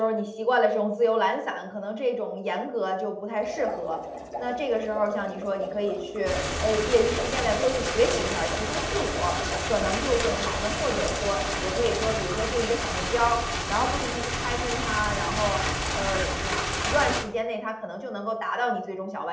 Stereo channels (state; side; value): identical; both; correlation 1.00